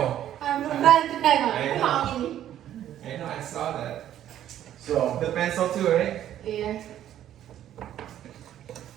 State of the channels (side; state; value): left; quieter; 11.5 dB